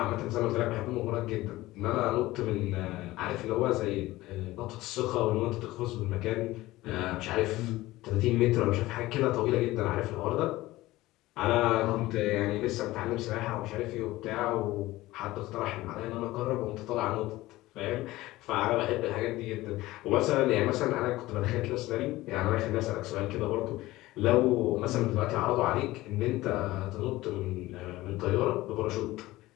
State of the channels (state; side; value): quieter; right; 17.9 dB